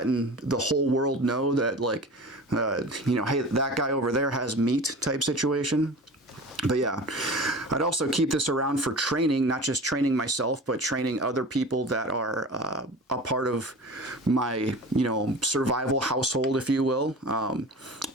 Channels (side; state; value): both; normal; correlation 0.36